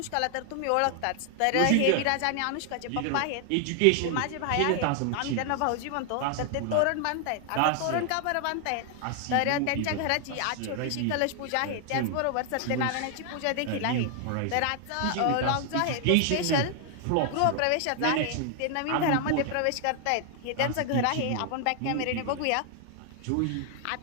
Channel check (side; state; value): both; different; correlation 0.00